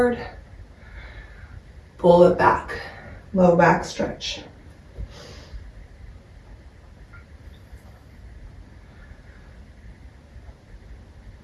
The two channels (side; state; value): both; identical; correlation 1.00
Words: Pull it back, low back stretch.